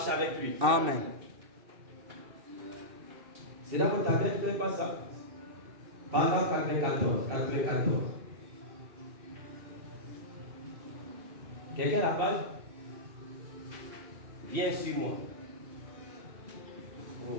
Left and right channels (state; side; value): late; left; 2.7 ms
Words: avec lui. Amen. C'est dans votre tablette, vous ne faites pas ça. Paragraphe 94. 94. Quelqu'un a la page? Viens sur moi. Oh,